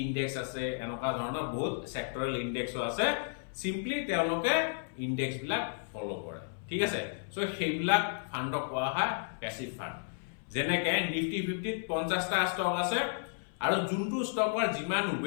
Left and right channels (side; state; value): right; silent; 56 dB below the other